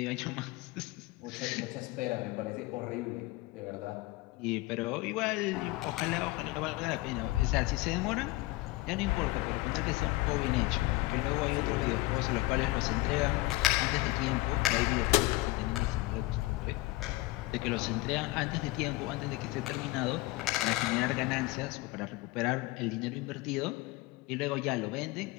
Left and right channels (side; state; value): right; quieter; 20.5 dB